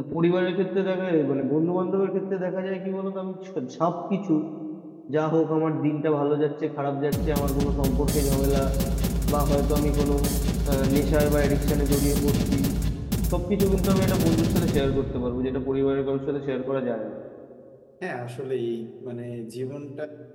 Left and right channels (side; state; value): both; identical; correlation 1.00